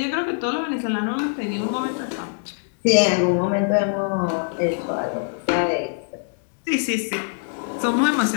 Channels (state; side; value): silent; right; 63 dB below the other